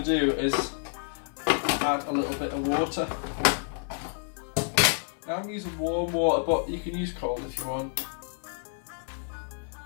do is add a little bit of water. Now I'm using warm water, but you can use cold if you want.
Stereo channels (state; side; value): silent; right; 56 dB below the other